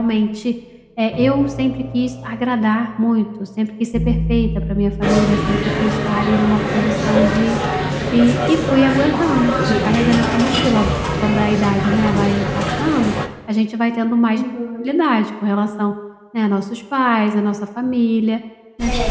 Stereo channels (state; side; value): identical; both; correlation 1.00